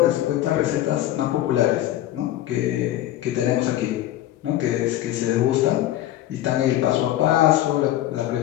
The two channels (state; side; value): quieter; right; 13.7 dB